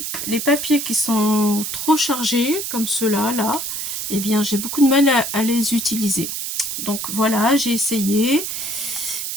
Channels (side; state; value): right; noise; hiss, 4 dB below the sound